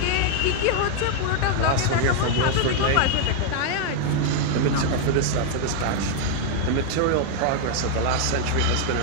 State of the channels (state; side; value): different; both; correlation 0.00